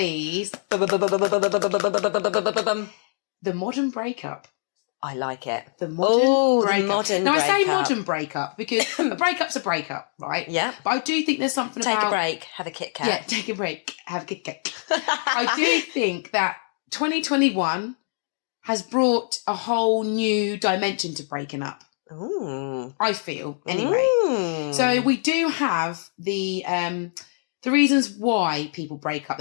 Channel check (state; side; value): silent; right; digital silence